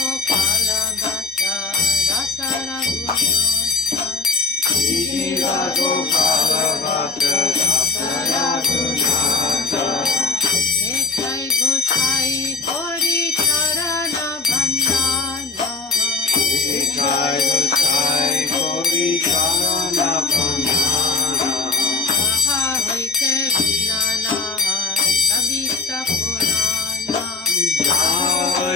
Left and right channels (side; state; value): right; quieter; 3.9 dB